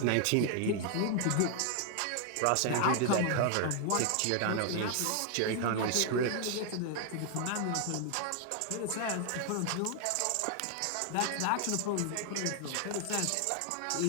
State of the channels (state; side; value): different; both; correlation 0.00